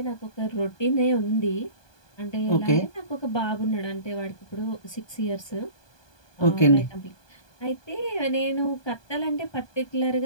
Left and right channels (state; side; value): late; right; 1.2 ms